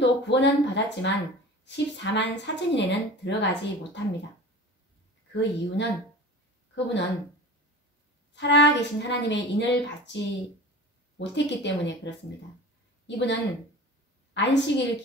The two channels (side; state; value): both; normal; correlation 0.38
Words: 구원은 받았지만 14만 4천인에는 들어가지 못합니다. 그 이유는 그분은 살아계신 하나님의 인을 받지 못했기 때문에 그렇습니다. 이분은 안식일